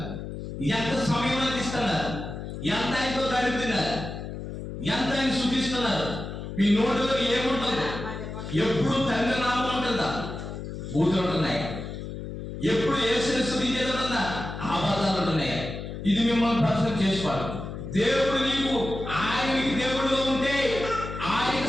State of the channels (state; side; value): noise; left; hum, 8 dB below the sound